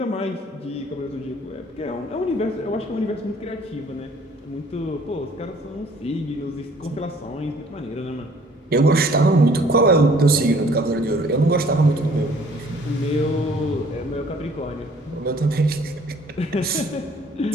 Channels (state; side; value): normal; both; correlation 0.56